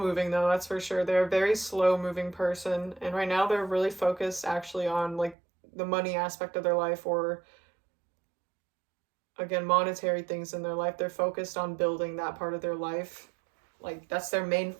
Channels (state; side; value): drops out; left; at 5.4 s